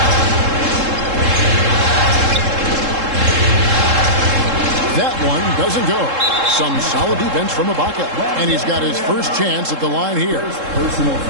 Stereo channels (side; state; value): left; late; 3.7 ms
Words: That one doesn't go. Some solid defense from Ibaka, and he's got his first chance at the line here. Personal